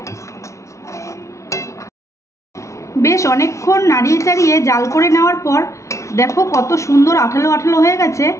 বেশ অনেকক্ষণ নাড়িয়ে চাড়িয়ে জাল করে নেওয়ার পর দেখো কত সুন্দর আঠালো আঠালো হয়ে গেছে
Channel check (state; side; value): late; right; 0.14 ms